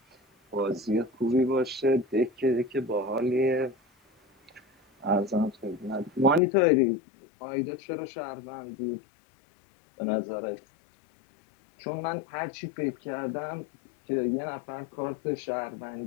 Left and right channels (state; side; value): drops out; right; at 6.4 s